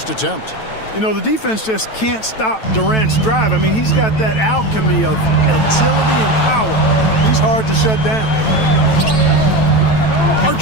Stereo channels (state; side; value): late; right; 9.1 ms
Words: attempt. You know, the defense just can't stop Durant's drive. I mean, he's got that alchemy of agility and power. He's hard to shut down.